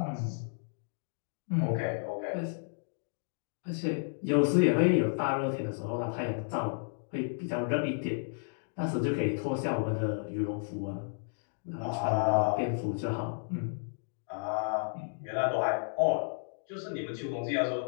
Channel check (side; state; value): right; silent; digital silence